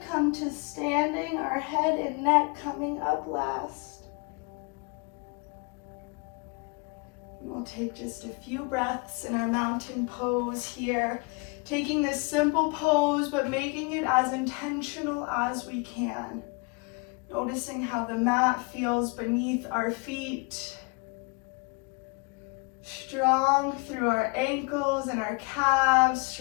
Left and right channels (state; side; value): quieter; right; 30.7 dB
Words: to standing, our head and neck coming up last. We'll take just a few breaths in our mountain pose here, taking this simple pose, but making it as intentional as we can. Noticing how the mat feels beneath our feet. Strong through our ankles and our calves,